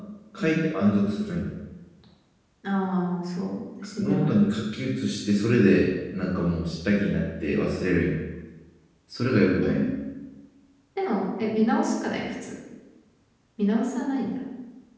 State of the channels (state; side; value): identical; both; correlation 1.00